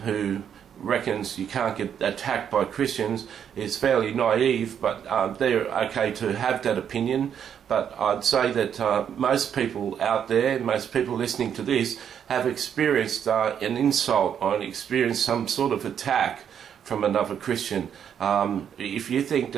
reckons you can't get attacked by Christians is fairly naive, but they're okay to have that opinion. But I'd say that most people out there, most people listening to this, have experienced an insult or experienced some sort of attack from another Christian. If you think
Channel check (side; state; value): left; quieter; 8.5 dB